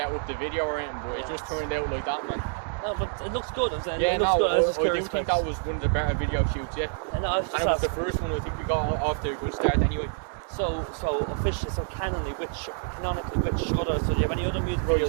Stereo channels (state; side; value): silent; left; 60 dB below the other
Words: up the video or anything, but it just turned out like that, man. No, but it looks good. I'm saying. Yeah, it looks good. I do think that was one of the better video shoots, yeah. And it was the first one. I think we got off to a good start anyway. So officially, canonically, which other? So do you have any other music